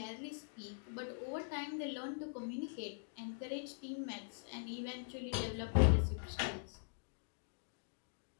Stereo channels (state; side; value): silent; right; digital silence